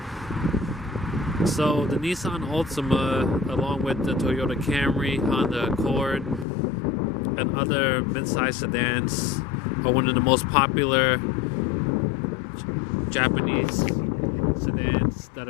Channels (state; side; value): drops out; right; at 6.5 s